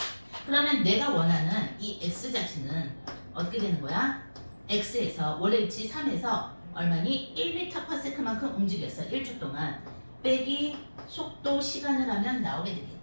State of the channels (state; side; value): inverted; both; correlation -1.00